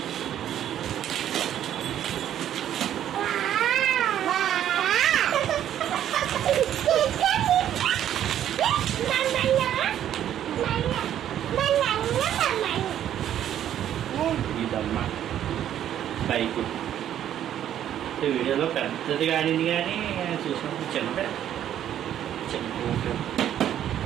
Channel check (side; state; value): left; quieter; 10.8 dB